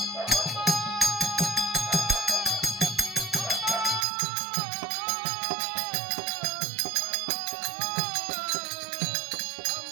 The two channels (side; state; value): left; drops out; at 4.0 s